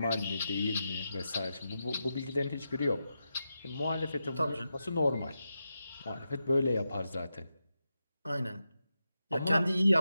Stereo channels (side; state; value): both; inverted; correlation -0.88